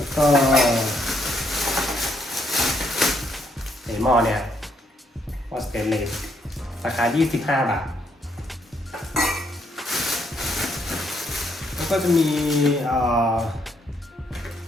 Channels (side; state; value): both; normal; correlation 0.73